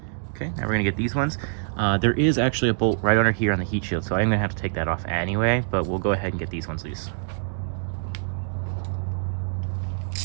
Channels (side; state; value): left; silent; digital silence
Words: Okay, now we're gonna get these ones. There is actually a bolt right under here on the heat shield, so I'm gonna have to take that off anyway, but we'll go ahead and get these ones loose.